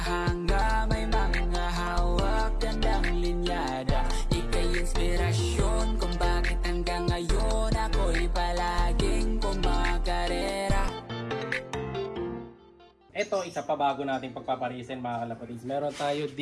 may mga hawak, gandang linyada. Ika'y inspirasyon kung bakit hanggang ngayon ako'y palaging kumakarera. Ito, isa pa bago nating pagpaparisin mga kalapatids. Meron tayo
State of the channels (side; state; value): both; identical; correlation 1.00